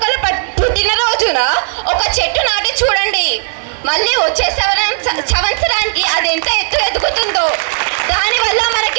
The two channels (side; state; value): left; silent; digital silence